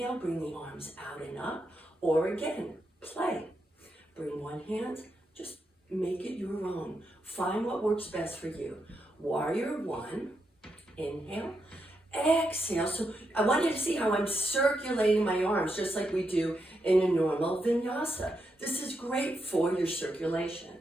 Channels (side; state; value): both; normal; correlation 0.83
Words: bring the arms out and up. Or again, play. Bring one hand, just make it your own. Find what works best for you. Warrior one, inhale, exhale. So I want you to see how I'm circulating my arms just like we do in a normal vinyasa. This is great for your circulation.